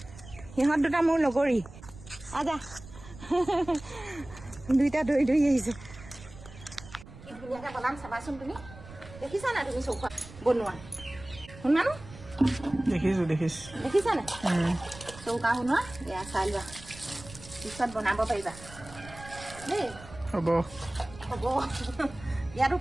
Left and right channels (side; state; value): right; noise; rumble, 17 dB below the sound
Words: সিহঁত দুটা মোৰ লগৰী। আজা দুইটা দৌৰি দৌৰি আহিছে। কি ধুনীয়াকৈ বনাম চাবাচোন। তুমি দেখিছা নাই? তুমি চৌকা বনোৱা শুনা নো? দেখিছা নাই চৌকা শুনোৱা? এয়া চাই লোৱা, পিছত বনাব পাৰিবা দেই। হ'ব ইয়াতো